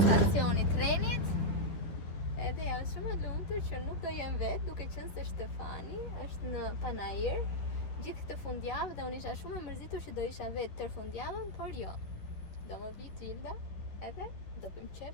e trenit. Edhe jam shumë e lumtur që nuk do jem vetë, duke qenë se Shtefani është në Panajër gjithë këtë fundjavë dhe unë isha shumë e mërzitur që do isha vetë tër fundjavën, por jo. Do më vi Gjilda edhe do bëjmë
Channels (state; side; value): late; right; 11 ms